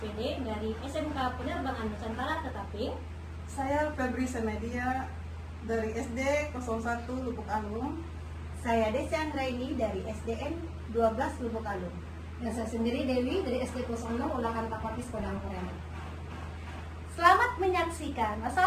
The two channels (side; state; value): both; identical; correlation 1.00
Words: dari SMK Penerbangan Nusantara Ketaping. Saya Febri Semedia dari SD 01 Lubuk Alung. Saya Desi Anggraini dari SDN 12 Lubuk Alung. Dan saya sendiri Dewi dari SD 06 Ulangan Tapatis Padang Pariaman. Selamat menyaksikan.